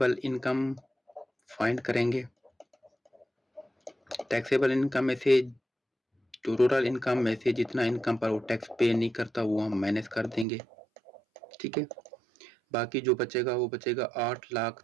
इनकम फाइंड करेंगे। टैक्सेबल इनकम में से जो टोटल इनकम में से जितना इनकम पर वो टैक्स पे नहीं करता वो हम माइनस कर देंगे। ठीक है, बाकी जो बचेगा वो बचेगा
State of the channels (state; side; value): drops out; left; at 10.5 s